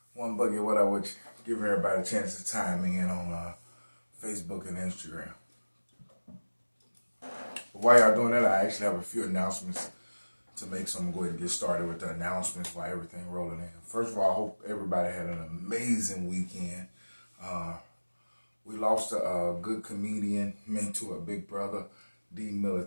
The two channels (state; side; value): inverted; both; correlation -1.00